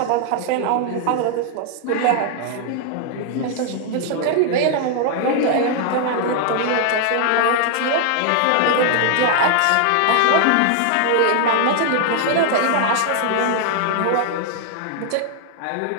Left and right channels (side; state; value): both; different; correlation 0.00